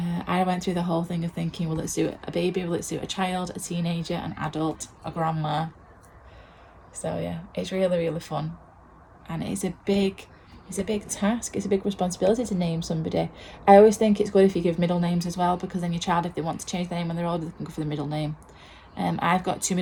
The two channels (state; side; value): identical; both; correlation 1.00